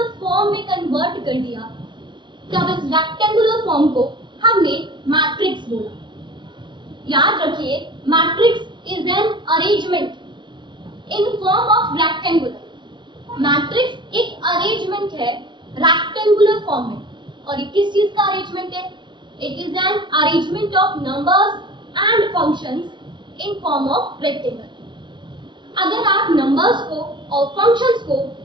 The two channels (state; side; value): late; left; 0.23 ms